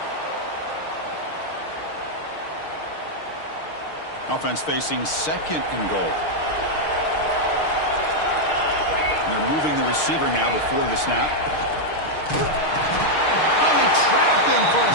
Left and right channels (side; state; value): right; late; 6.5 ms